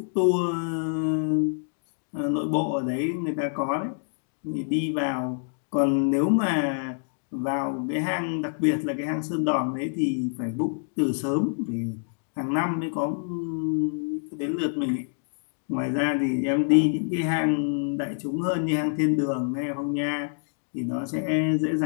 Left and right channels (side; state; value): right; silent; digital silence